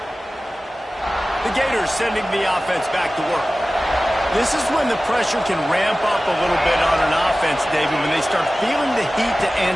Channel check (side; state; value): both; normal; correlation 0.96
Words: The Gators sending the offense back to work. This is when the pressure can ramp up a little bit on an offense, David, when they start feeling the heat to